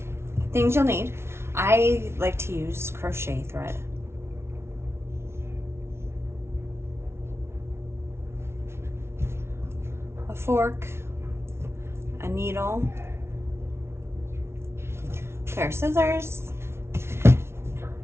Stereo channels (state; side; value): late; left; 0.12 ms